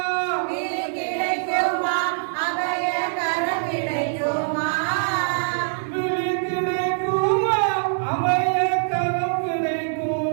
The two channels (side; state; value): left; silent; 63 dB below the other